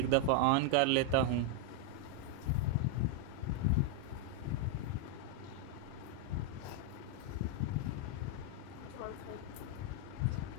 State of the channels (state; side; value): different; both; correlation 0.00